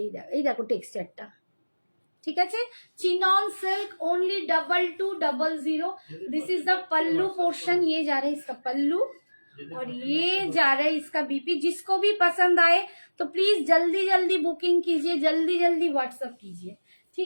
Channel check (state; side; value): inverted; both; correlation -1.00